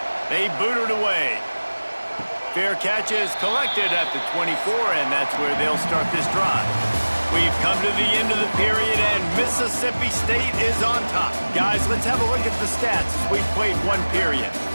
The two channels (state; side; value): inverted; both; correlation -1.00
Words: They boot it away. Fair catch is collected at the 24, and that's where they'll start this drive. We've come to the end of the period, and Mississippi State is on top. Guys, let's have a look at the stats as we've played one period.